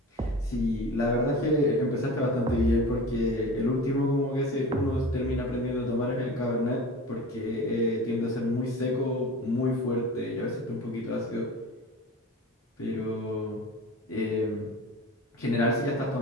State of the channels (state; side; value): normal; both; correlation 0.35